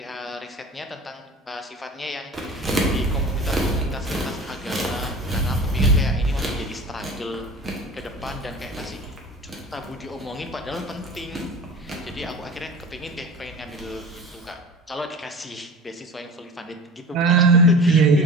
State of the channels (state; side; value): normal; both; correlation 0.38